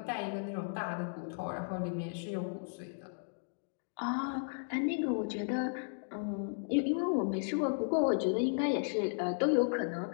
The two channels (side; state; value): right; silent; digital silence